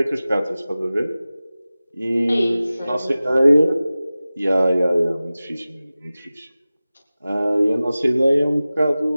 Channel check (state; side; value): inverted; both; correlation -0.97